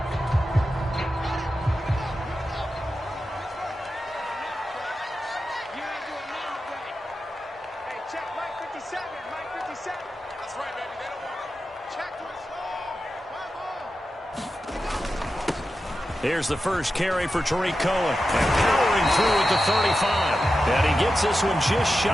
Here's the first carry for Tariq Cohen. And powering through at the 35. And he gets this one just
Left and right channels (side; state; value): both; normal; correlation 0.91